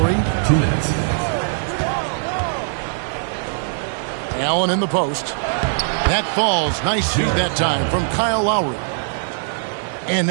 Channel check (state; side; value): silent; left; 65 dB below the other